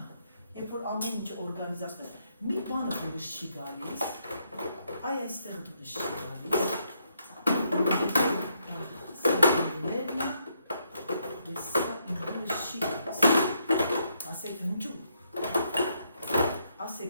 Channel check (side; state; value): both; inverted; correlation -0.75